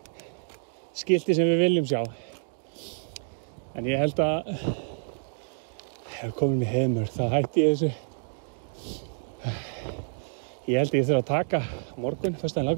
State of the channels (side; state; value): left; silent; digital silence